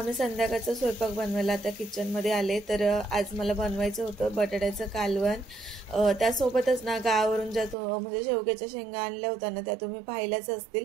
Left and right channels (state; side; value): drops out; left; at 7.8 s